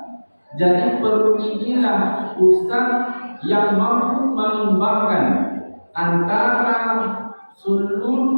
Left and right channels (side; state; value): both; inverted; correlation -1.00